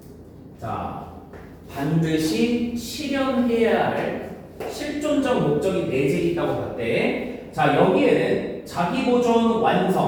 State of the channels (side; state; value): both; identical; correlation 1.00